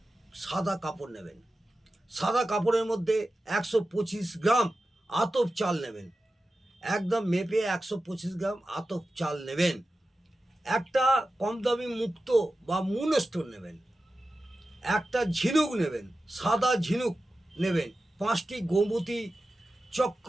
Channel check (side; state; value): both; normal; correlation 0.93